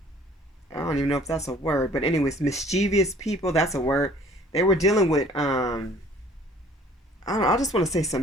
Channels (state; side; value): normal; both; correlation 0.54